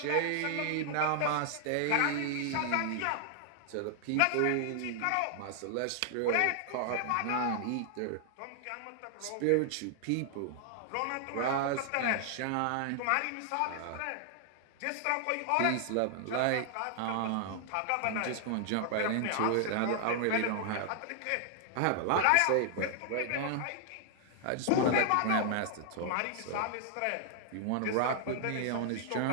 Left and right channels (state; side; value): different; both; correlation 0.00